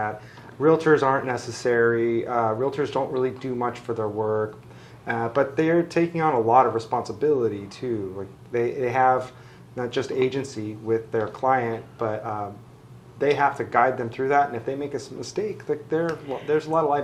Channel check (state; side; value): identical; both; correlation 1.00